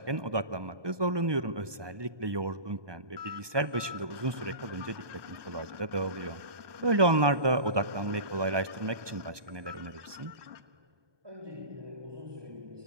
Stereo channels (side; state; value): left; late; 1.2 ms